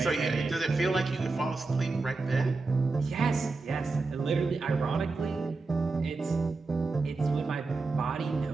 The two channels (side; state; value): left; quieter; 3.8 dB